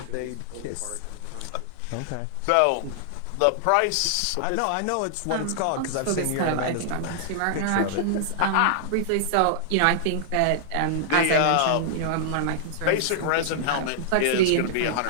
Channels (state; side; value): different; both; correlation -0.01